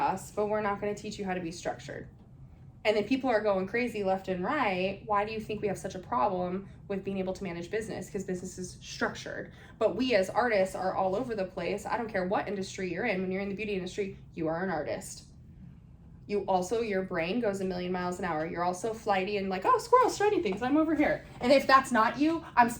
but we're not going to teach you how to be structured. And then people are going crazy left and right. Why do you think we have such a problem with being able to manage business? Because business is structured. But we as artists are all over the place. I don't care what industry you're in. When you're in the beauty industry, you are an artist. You also, your brain goes a million miles an hour. You're also flighty and like, oh, squirrels, shiny things, I'm over here. And if that's not you, I'm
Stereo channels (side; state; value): both; identical; correlation 1.00